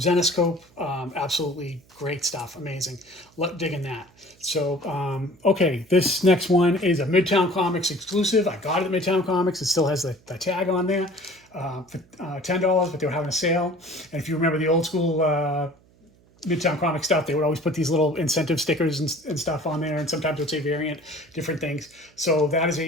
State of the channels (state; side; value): noise; right; hum, 30 dB below the sound